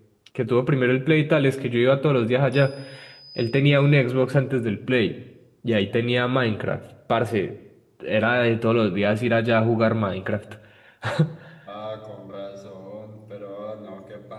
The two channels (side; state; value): both; identical; correlation 1.00